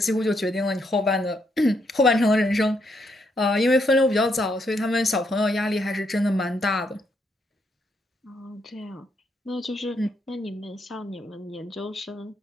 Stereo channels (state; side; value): normal; both; correlation 0.76